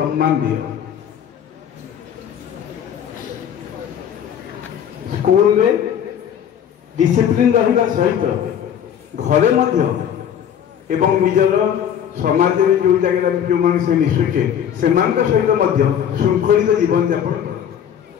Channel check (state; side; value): quieter; right; 9.1 dB